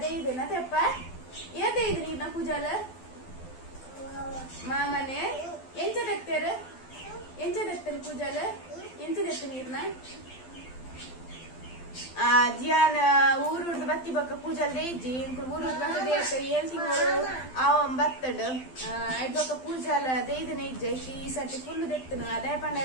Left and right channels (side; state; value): right; late; 12 ms